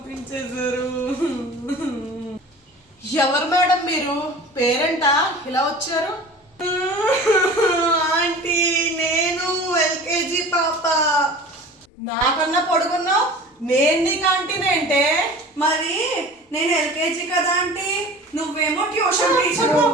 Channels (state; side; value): normal; both; correlation 0.40